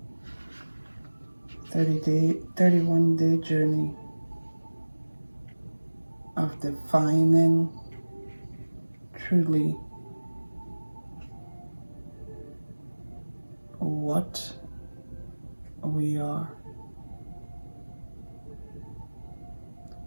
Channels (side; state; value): both; inverted; correlation -1.00